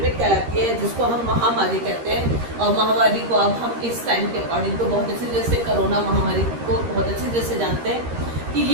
कहलाती है, जिसको हम महामारी कहते हैं। और महामारी को अब हम इस टाइम के अकॉर्डिंग तो बहुत अच्छी तरह से कोरोना महामारी को बहुत अच्छी तरह से जानते हैं कि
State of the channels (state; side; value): late; left; 13 ms